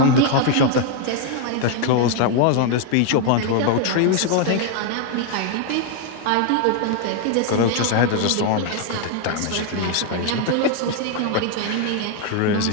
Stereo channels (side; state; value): both; different; correlation 0.00